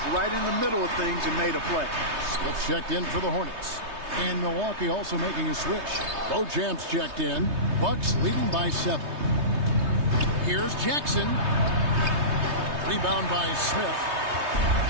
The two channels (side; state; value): left; late; 3.2 ms